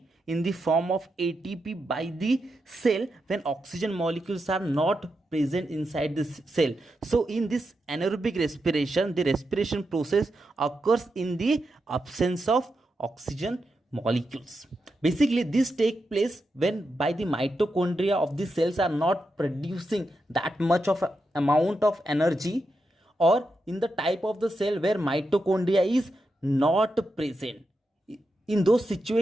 in the form of ATP by the cell when oxygen molecules are not present inside the cell. So in this anaerobic respiration, the respiration process occurs in the absence of oxygen molecules. Basically this takes place when by the mitochondria of the cells are not producing that much of amount of energy, or in the type of the cell where mitochondria is not present. In those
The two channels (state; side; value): normal; both; correlation 0.86